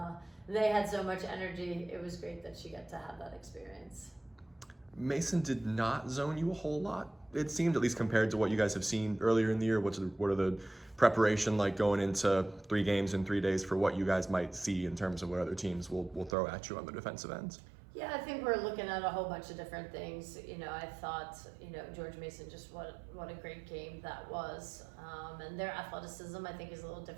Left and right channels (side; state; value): left; drops out; at 16.4 s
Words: they had so much energy. It was great that she got to have that experience. Mason did not zone you a whole lot. It seemed, at least compared to what you guys have seen earlier in the year. What are the preparation like going into 3 games in 3 days for what you guys might see in terms of what other teams will throw at you on the defensive ends? Yeah, I think we're looking at a whole bunch of different things. I thought, George Mason, just what a great game that was. And their athleticism, I think, is a little